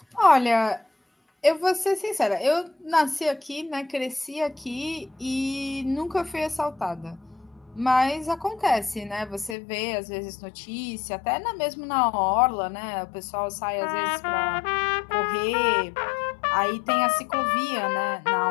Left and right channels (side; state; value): right; drops out; at 9.6 s